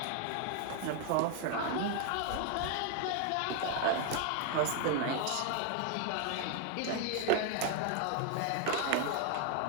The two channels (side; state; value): both; different; correlation 0.00